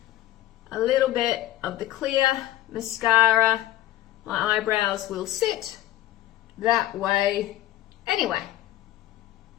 a little bit of the clear mascara, my eyebrows will sit that way anyway.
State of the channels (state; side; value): quieter; right; 14.2 dB